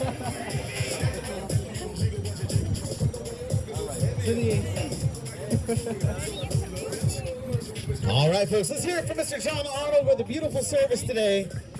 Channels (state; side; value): identical; both; correlation 1.00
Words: All right, folks, let's hear it from Mr. John Arnold with a beautiful service today.